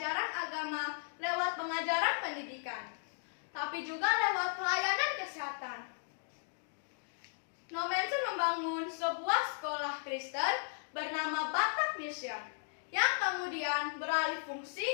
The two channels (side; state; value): right; silent; digital silence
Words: agama lewat pengajaran pendidikan, tapi juga lewat pelayanan kesehatan. Nommensen membangun sebuah sekolah Kristen bernama Batak Mission, yang kemudian beralih fungsi